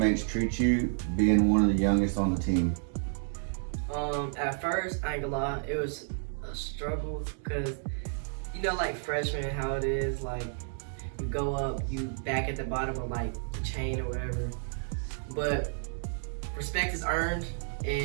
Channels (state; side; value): silent; left; 57 dB below the other